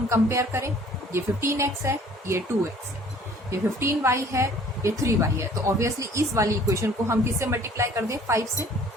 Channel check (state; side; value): normal; both; correlation 0.54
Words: कंपेयर करें, ये 15x है, ये 2x है, ये 15y है, ये 3y है, तो ऑब्वियसली इस वाली इक्वेशन को हम किससे मल्टीप्लाई कर दें 5 से।